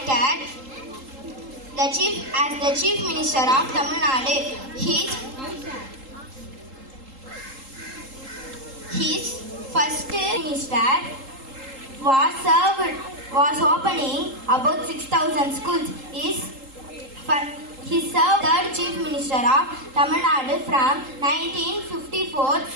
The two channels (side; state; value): left; late; 3.8 ms